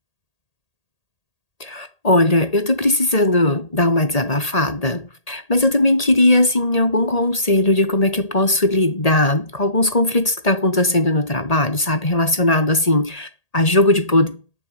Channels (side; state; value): right; late; 1.8 ms